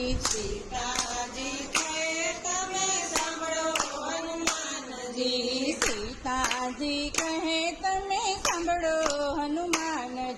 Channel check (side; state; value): both; identical; correlation 1.00